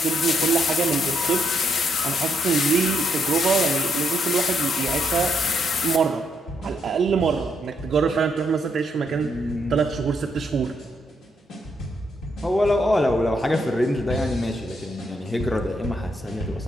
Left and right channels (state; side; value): normal; both; correlation 0.76